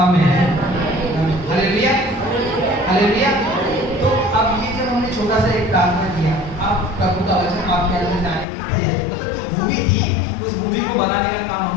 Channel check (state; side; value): drops out; right; at 8.5 s